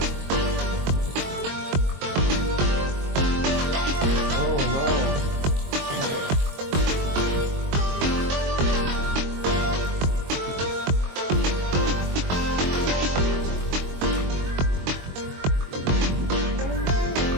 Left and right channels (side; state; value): left; late; 22 ms